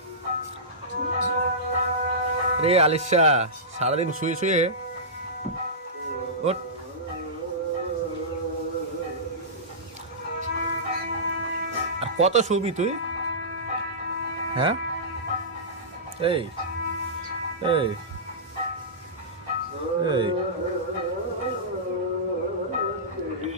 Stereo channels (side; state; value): both; normal; correlation -0.17